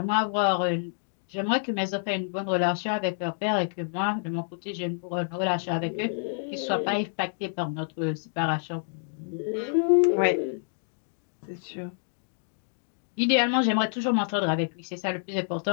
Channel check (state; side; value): silent; right; digital silence